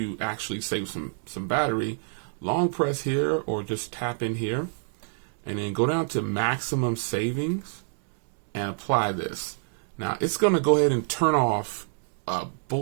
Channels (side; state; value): left; silent; digital silence